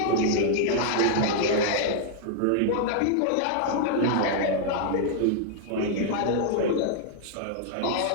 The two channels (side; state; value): both; different; correlation -0.01